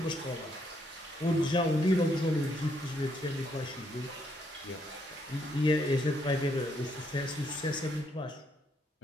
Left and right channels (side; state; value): both; normal; correlation 0.73